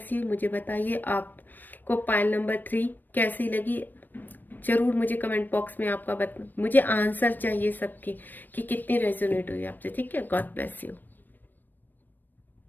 you. मुझे बताइए आपको पाइल नंबर 3 कैसी लगी, जरूर मुझे कमेंट बॉक्स में आपका मुझे आंसर चाहिए सबके कि कितनी रेजोनेट हुई आपसे, ठीक है। God bless you.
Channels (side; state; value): right; late; 0.091 ms